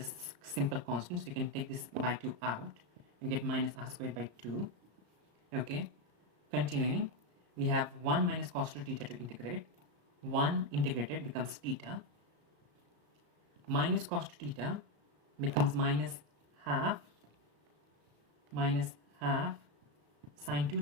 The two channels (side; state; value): left; late; 34 ms